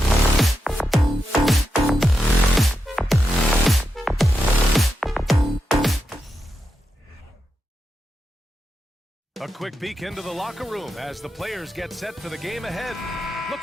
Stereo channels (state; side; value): normal; both; correlation 0.87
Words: quick peek into the locker room as the players get set for the game ahead.